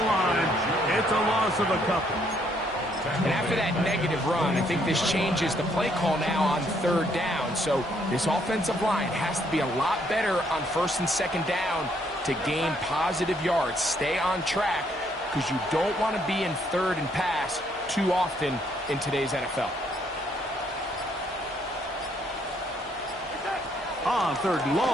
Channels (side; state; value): both; normal; correlation 0.69